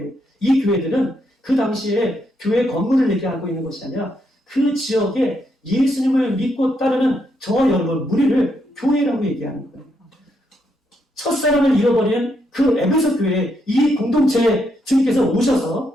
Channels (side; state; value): both; normal; correlation 0.78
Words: 이 교회들은 그 당시에 교회 건물을 얘기하고 있는 것이 아니라 그 지역에 예수님을 믿고 따르는 저와 여러분 무리를 교회라고 얘기하는 거예요. 첫사랑을 잃어버린 그 에베소 교회에 이 공동체에 주님께서